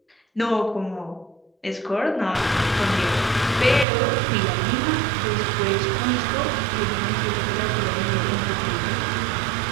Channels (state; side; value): drops out; left; at 3.9 s